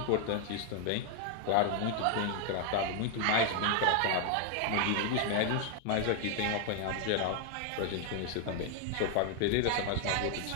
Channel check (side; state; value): both; different; correlation 0.00